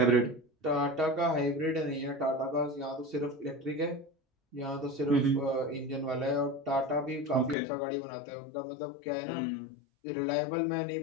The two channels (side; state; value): right; drops out; at 7.6 s